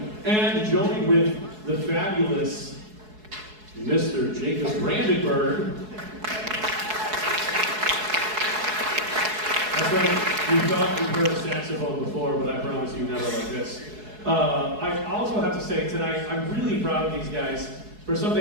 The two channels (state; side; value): late; left; 4.7 ms